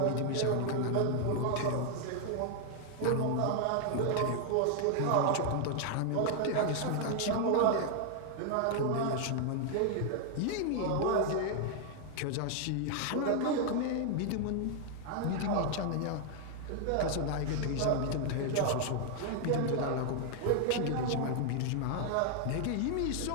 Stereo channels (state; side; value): different; both; correlation 0.00